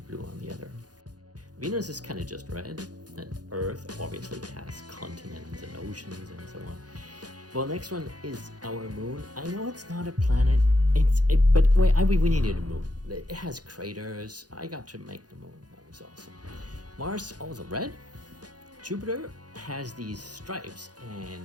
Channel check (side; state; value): left; late; 0.69 ms